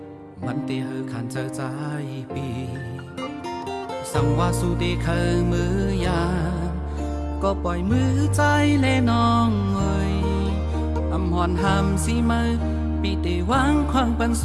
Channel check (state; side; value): identical; both; correlation 1.00